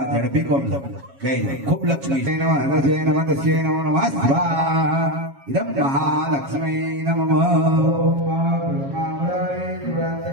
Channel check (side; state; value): left; late; 7.3 ms